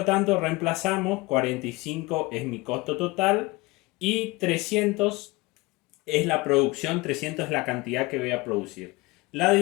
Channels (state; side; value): quieter; right; 22.6 dB